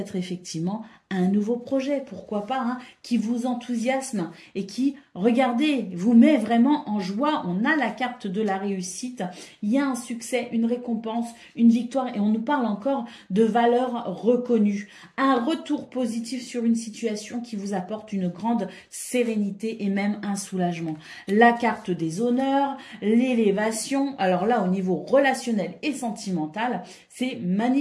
effectivement un nouveau projet, pourquoi pas, hein, qui vous enthousiasme et qui, regardez, vous met vraiment en joie. On a la carte de la réussite, il y a un succès, une récompense, une victoire et on nous parle encore de valeurs reconnues. Un retour positif sur une situation qui vous apporte une grande sérénité et même un soulagement. La carte des honneurs, l'élévation, alors là au niveau relationnel et sentimental, c'est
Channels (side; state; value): both; identical; correlation 1.00